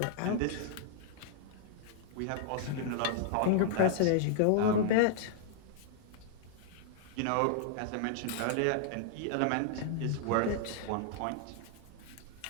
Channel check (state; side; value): different; both; correlation -0.01